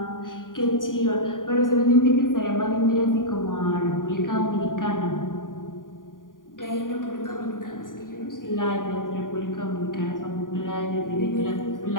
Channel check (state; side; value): late; right; 0.89 ms